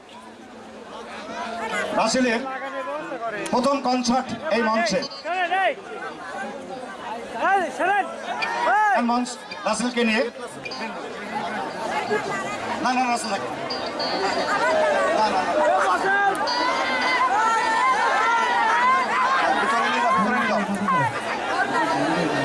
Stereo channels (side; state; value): both; identical; correlation 1.00